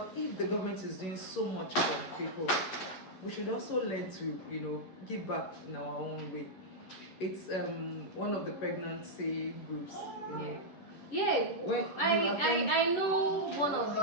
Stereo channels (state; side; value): late; right; 11 ms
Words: if the government is doing so much for people, we should also learn to, you know, give back in our own way. It's one of the pregnancy groups, you know. Yeah, I know one of the